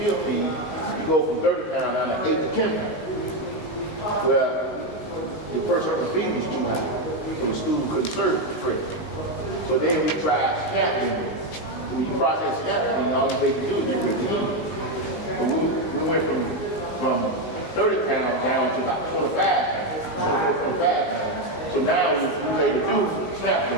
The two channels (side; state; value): right; late; 19 ms